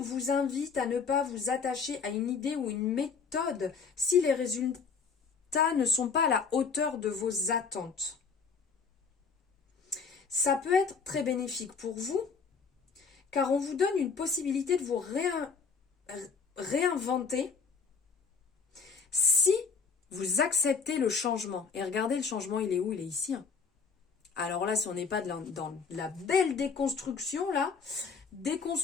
invite à ne pas vous attacher à une idée ou une méthode si les résultats ne sont pas à la hauteur de vos attentes. Ça peut être très bénéfique pour vous, car on vous donne une possibilité de vous réinventer si vous acceptez le changement. Et regardez, le changement, il est où? Il est ici. Hein. Alors là, si on n'est pas dans la belle déconstruction, là,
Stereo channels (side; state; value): right; quieter; 5.4 dB